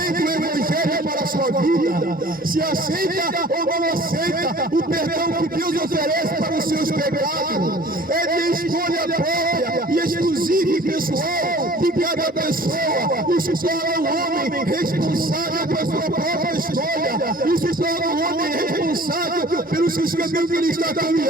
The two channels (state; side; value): normal; both; correlation 0.48